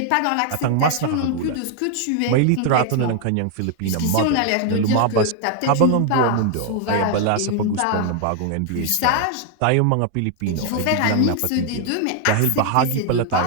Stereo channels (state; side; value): different; both; correlation 0.00